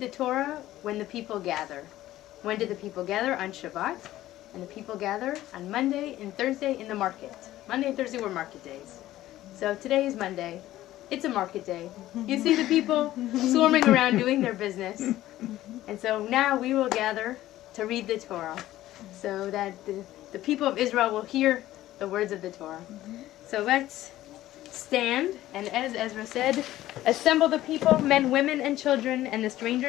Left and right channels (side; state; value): right; quieter; 14.7 dB